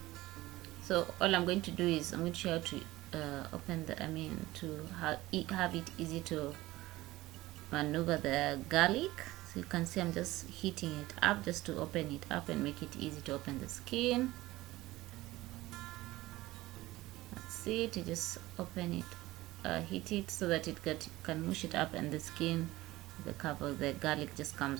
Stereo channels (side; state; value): left; quieter; 18.0 dB